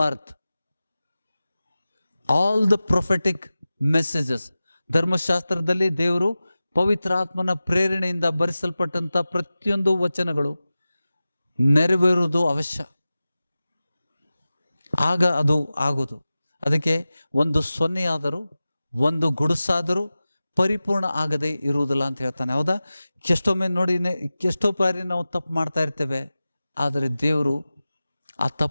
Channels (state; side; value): inverted; both; correlation -0.96